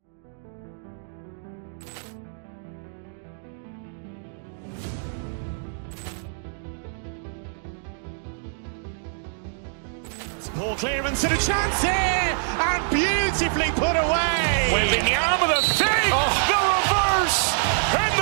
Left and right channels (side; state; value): left; silent; digital silence